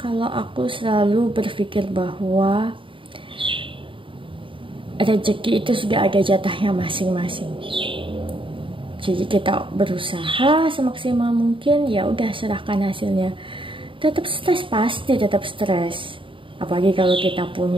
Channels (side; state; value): left; late; 0.25 ms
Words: aku selalu berpikir bahwa rezeki itu sudah ada jatahnya masing-masing. Jadi kita berusaha semaksimal mungkin, ya udah serahkan hasilnya. Tetap stres, pasti tetap stres. Apalagi kalau kita